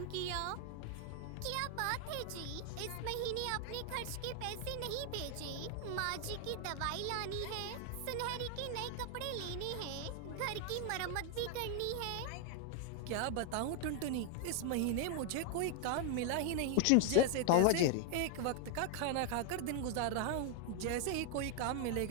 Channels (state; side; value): different; both; correlation 0.00